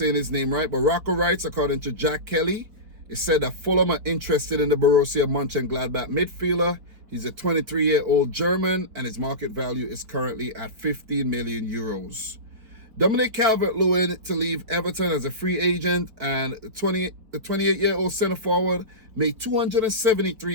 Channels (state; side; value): late; left; 4.6 ms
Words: his name right, but Rocco Wrights, according to Jack Kelly, it said that Fulham are interested in the Borussia Mönchengladbach midfielder. He's a 23-year-old German, and his market value is currently at 15 million euros. Dominic Calvert-Lewin to leave Everton as a free agent, and the 28-year-old centre-forward made